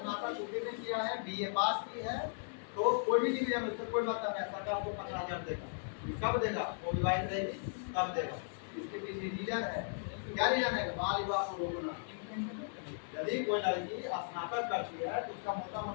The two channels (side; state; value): right; silent; digital silence